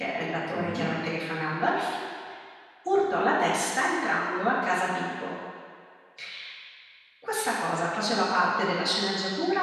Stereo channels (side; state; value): both; identical; correlation 1.00